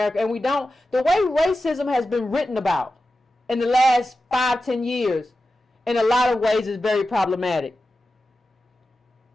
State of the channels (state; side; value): normal; both; correlation 0.93